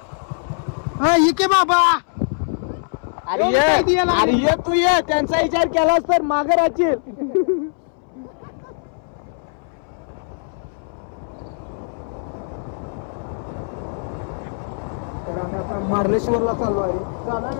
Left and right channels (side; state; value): right; silent; 64 dB below the other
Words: इके बाबा, अरे तू ये, त्यांचा विचार केलास तर मागे राहशील. तर आम्ही आता मार्लेश्वरला चाललो आहे. चालू आहे